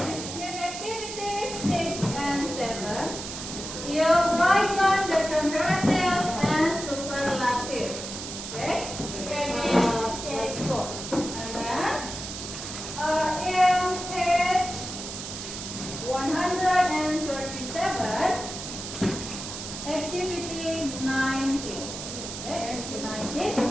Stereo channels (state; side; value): noise; right; hiss, 8 dB below the sound